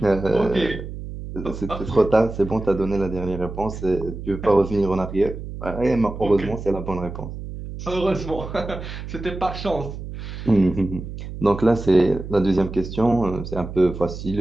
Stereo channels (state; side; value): noise; right; hum, 9 dB below the sound